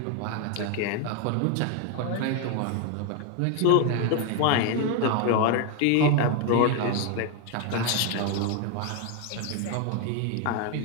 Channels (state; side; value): different; both; correlation 0.01